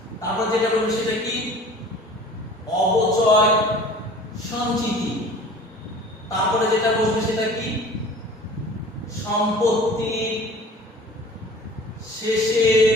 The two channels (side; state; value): both; normal; correlation 0.45